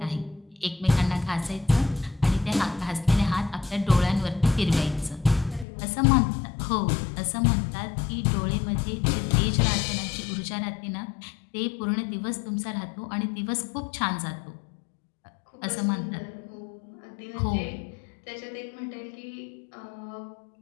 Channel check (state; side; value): drops out; right; at 5.7 s